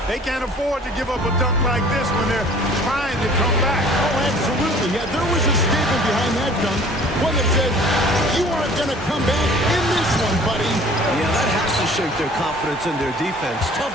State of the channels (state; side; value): normal; both; correlation 0.50